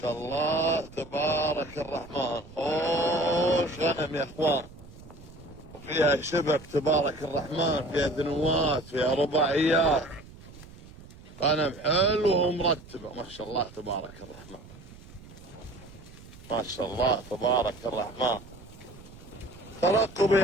الله تبارك الرحمن. خوش غنم يا اخوان، وفيها شبك تبارك الرحمن، فيها ذنوات، فيها رباعيات، غنم حلوة ومرتبة. ما شاء الله تبارك الرحمن، ما شاء الله تبارك الرحمن. ترقبوا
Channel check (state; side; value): noise; right; rumble, 19 dB below the sound